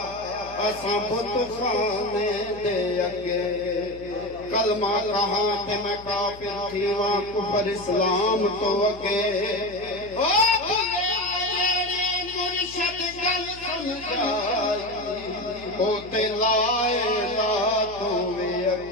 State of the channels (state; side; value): noise; left; hum, 19 dB below the sound